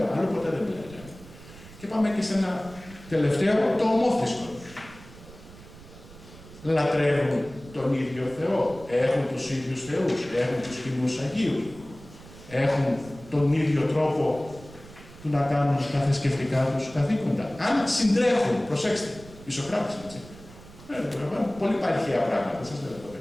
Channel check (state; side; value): noise; right; rumble, 19 dB below the sound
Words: Αλλού ποτέ δεν μιλάει το αίμα. Και πάμε και σε ένα τελευταίο, το ομόθρησκο. Λατρεύουν τον ίδιο Θεό. Έχουν τους ίδιους θεούς. Έχουν τους κοινούς Αγίους. Έχουν τον ίδιο τρόπο του να κάνουν τα θρησκευτικά τους καθήκοντα. Αν συντρέχουν, προσέξτε, οι Σωκράτες, έτσι. Πολύ παρχαία πράγματα, δεν σας λέω το